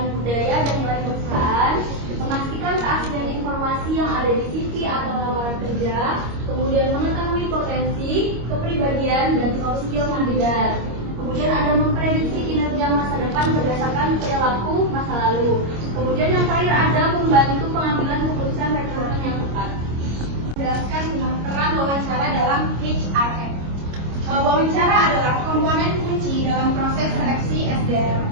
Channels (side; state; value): left; late; 25 ms